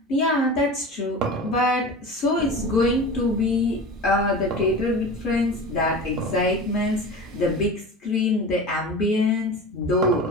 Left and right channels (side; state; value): both; normal; correlation 0.33